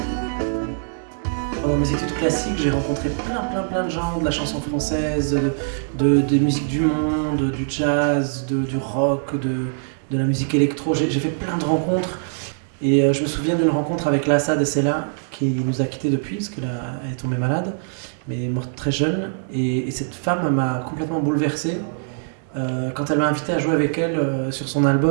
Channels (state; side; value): silent; left; digital silence